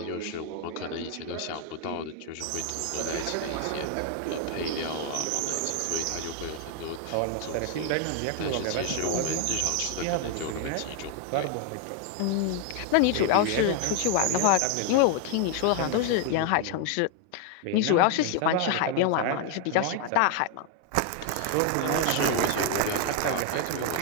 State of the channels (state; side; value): different; both; correlation 0.00